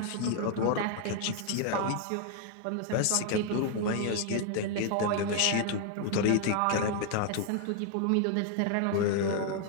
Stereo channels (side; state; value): both; different; correlation 0.00